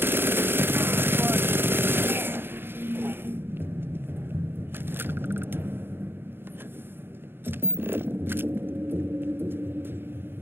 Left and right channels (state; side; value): late; left; 0.10 ms